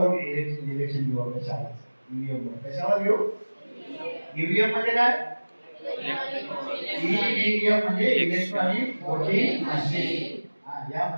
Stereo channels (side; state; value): both; inverted; correlation -1.00